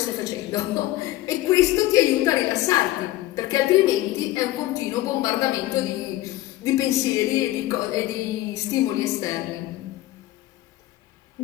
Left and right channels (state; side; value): quieter; right; 16.2 dB